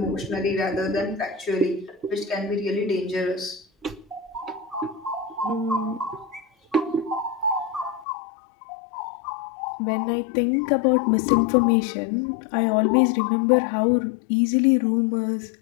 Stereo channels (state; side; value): drops out; right; at 8.1 s